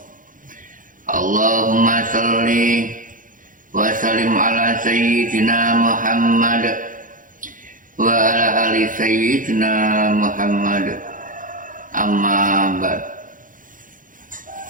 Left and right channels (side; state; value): left; late; 0.39 ms